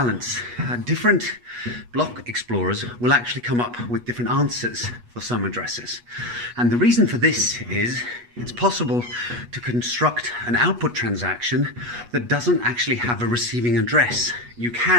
Different block explorers will actually come up with different answers for some addresses. And the reason for this is it's possible to construct an output transaction that doesn't actually have a receiving address. You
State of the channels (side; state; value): left; late; 8.3 ms